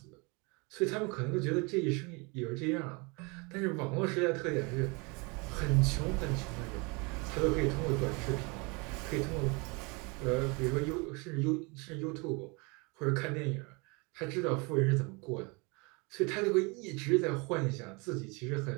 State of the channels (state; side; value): quieter; left; 29.1 dB